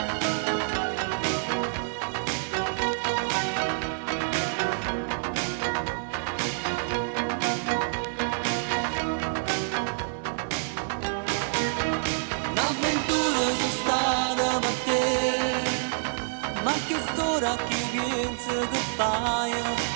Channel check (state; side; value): silent; left; 60 dB below the other